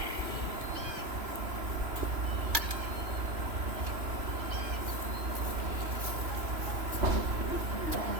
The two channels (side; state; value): left; late; 3.0 ms